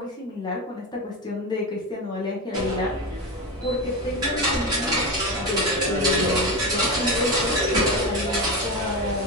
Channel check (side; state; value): both; normal; correlation 0.18